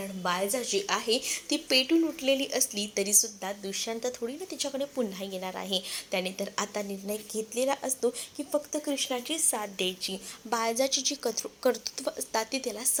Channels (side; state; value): both; identical; correlation 1.00